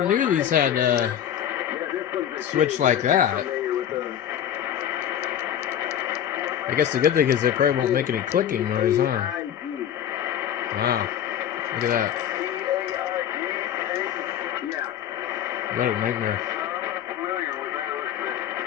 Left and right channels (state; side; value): quieter; right; 10.2 dB